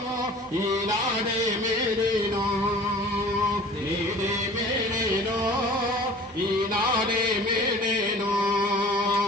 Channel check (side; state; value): both; normal; correlation 0.45